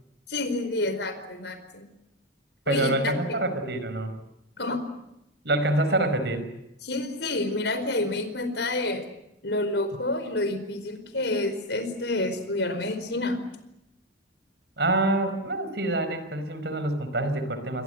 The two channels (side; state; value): both; normal; correlation 0.09